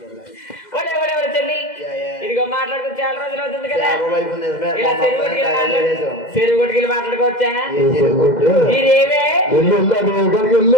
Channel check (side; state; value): right; late; 2.1 ms